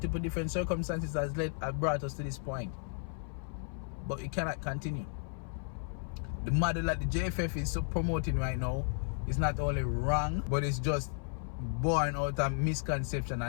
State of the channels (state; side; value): silent; right; 55 dB below the other